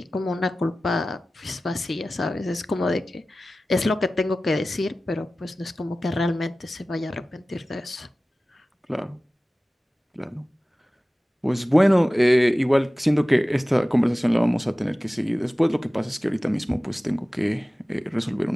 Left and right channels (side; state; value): both; normal; correlation 0.96